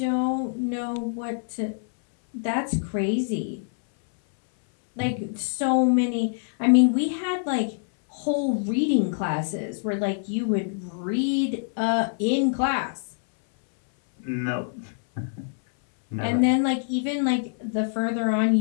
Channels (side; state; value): right; silent; 62 dB below the other